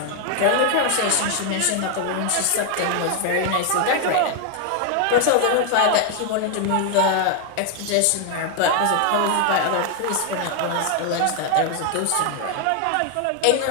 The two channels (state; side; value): different; both; correlation 0.00